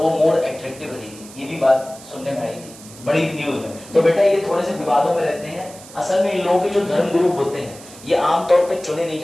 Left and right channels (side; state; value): right; noise; hiss, 19 dB below the sound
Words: वो मोर अट्रैक्टिव रहेगी। ये भी बात सुनने में आई थी बड़ी न्यूज में। तो बेटा ये थोड़े से विवादों में रहते हैं। असल में इन लोगों के जो धर्मगुरु होते हैं ये आमतौर पे चुने नहीं